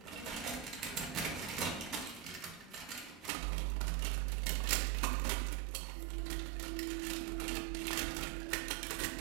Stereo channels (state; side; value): drops out; left; at 3.3 s